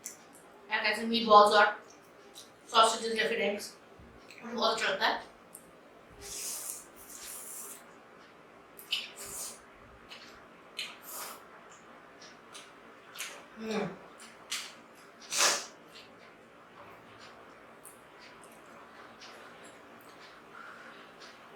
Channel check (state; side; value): identical; both; correlation 1.00